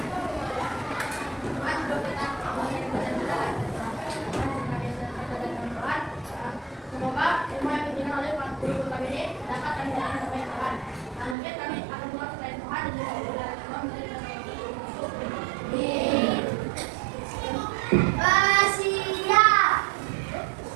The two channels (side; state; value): left; drops out; at 11.4 s